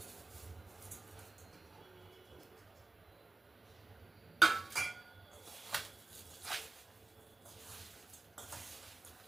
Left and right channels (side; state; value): left; quieter; 3.2 dB